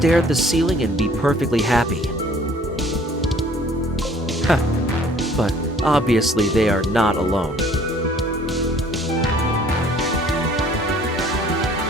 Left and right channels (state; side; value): normal; both; correlation 0.55